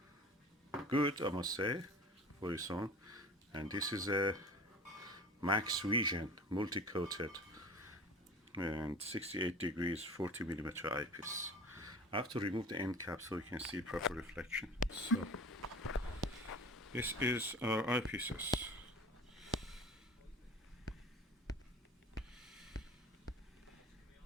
Good, I must say, for its own. And this is a Maxvision multi-coated and 68 degrees 40mm eyepiece. I have to remove the end cap so you can see proper reflection. So this is our eyepieces.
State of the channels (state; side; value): normal; both; correlation 0.40